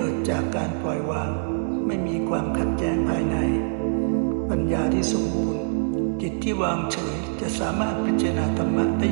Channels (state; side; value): silent; left; 62 dB below the other